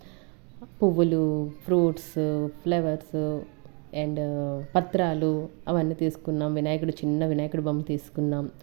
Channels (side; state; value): left; quieter; 34.1 dB